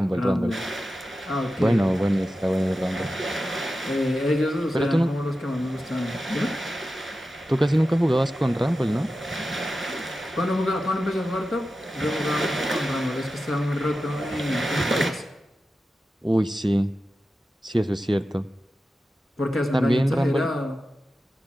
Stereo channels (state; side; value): normal; both; correlation 0.92